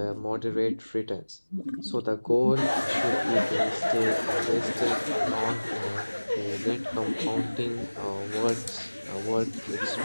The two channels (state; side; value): inverted; both; correlation -1.00